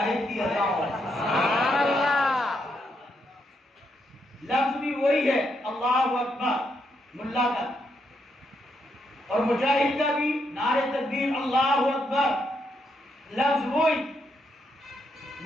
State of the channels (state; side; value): normal; both; correlation 0.79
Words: की अदा और है। लफ्ज भी वही है अल्लाहु अकबर मुल्ला का, और मुजाहिद का भी नारे तकबीर अल्लाहु अकबर। लफ्ज वही,